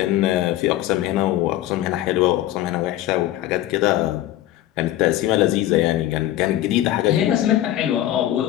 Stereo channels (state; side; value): quieter; right; 13.9 dB